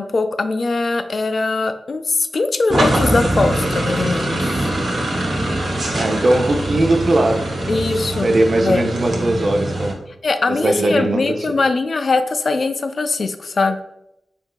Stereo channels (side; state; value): both; normal; correlation 0.92